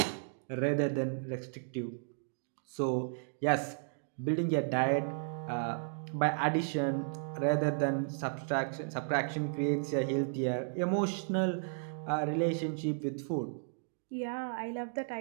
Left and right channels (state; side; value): silent; left; digital silence